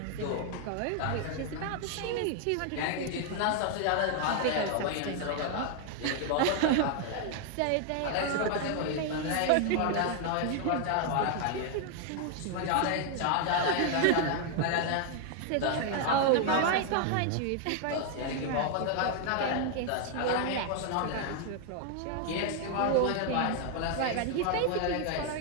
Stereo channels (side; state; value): both; different; correlation 0.00